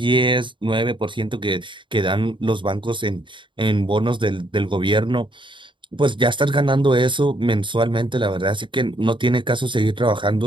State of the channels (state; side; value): late; left; 0.24 ms